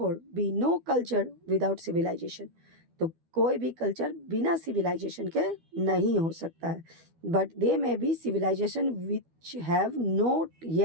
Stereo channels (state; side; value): late; left; 12 ms